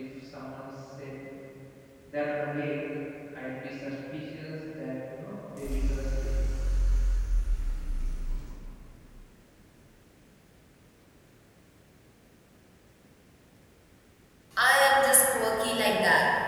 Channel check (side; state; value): both; identical; correlation 1.00